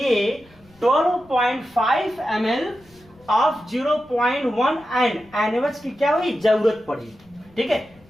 12.5 ml ऑफ 0.1 N NaOH की क्या हुई? जरूरत पड़ी, ठीक है।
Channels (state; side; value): noise; left; rumble, 28 dB below the sound